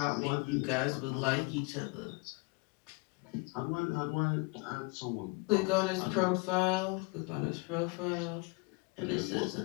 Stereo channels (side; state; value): right; quieter; 28.1 dB